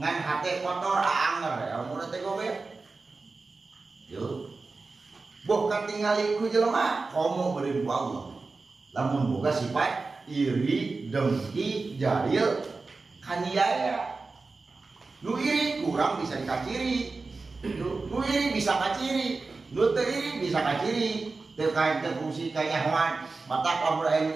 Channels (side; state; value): left; quieter; 3.9 dB